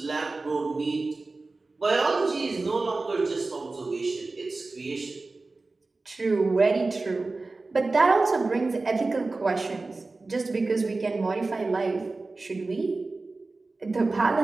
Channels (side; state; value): left; quieter; 3.5 dB